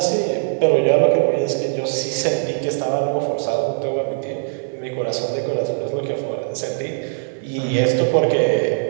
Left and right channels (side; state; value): left; silent; digital silence